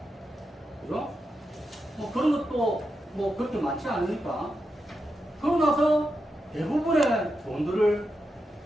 그죠? 그런 것도 그렇게 많지 않으니까. 그러고 나서 대부분의 돈들을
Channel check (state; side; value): normal; both; correlation 0.87